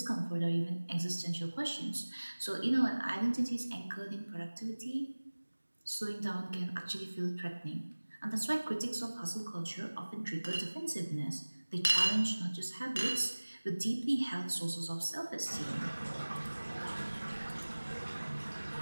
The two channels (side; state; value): both; inverted; correlation -1.00